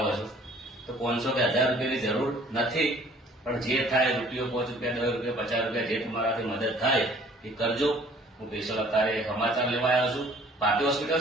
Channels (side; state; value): both; normal; correlation 0.55